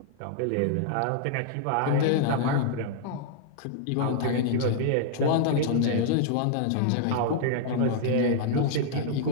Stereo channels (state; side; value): different; both; correlation -0.01